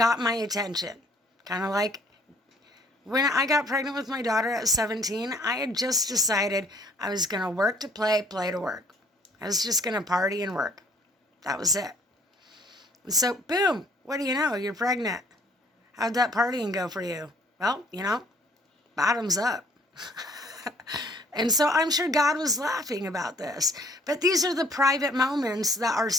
my attention. Kind of like when I got pregnant with my daughter at 17, I had just decided I was going to work to play, play to work. I was just going to party and work. That was it. And so, boom, what do you know? You're pregnant. How'd that partying go for you? Well, bottoms up. And so I'm sure God was laughing about this. But these are the private moments that are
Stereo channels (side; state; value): both; normal; correlation 0.60